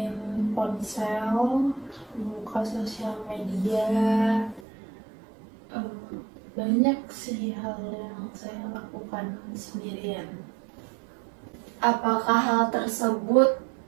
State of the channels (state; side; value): drops out; left; at 4.7 s